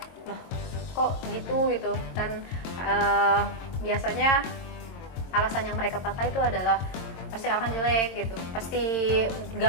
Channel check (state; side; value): late; right; 22 ms